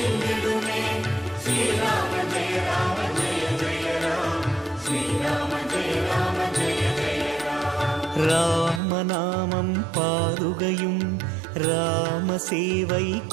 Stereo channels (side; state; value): left; drops out; at 8.8 s